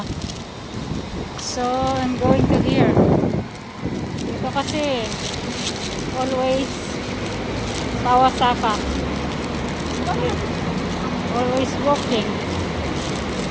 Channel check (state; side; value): identical; both; correlation 1.00